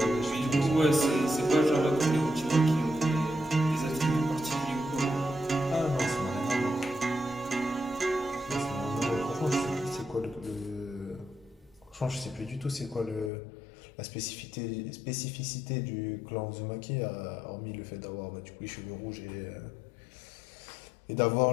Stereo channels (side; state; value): right; drops out; at 13.3 s